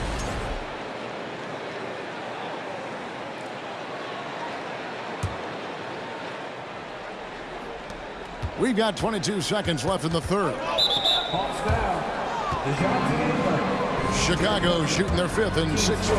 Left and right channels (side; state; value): both; identical; correlation 1.00